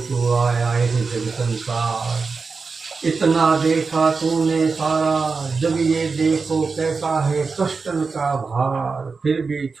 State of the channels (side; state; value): left; quieter; 4.6 dB